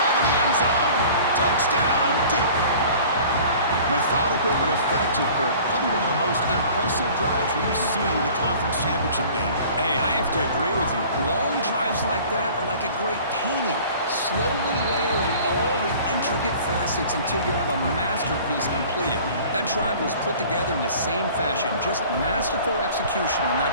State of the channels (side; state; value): both; inverted; correlation -0.47